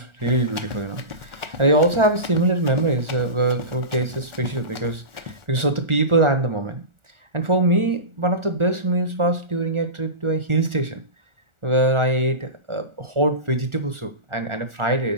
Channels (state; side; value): late; left; 1.4 ms